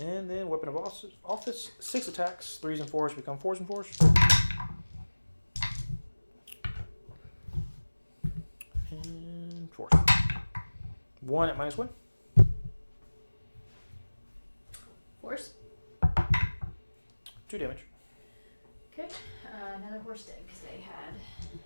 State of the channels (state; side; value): inverted; both; correlation -1.00